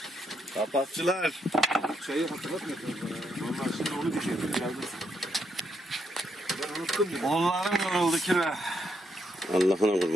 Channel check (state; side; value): normal; both; correlation 0.78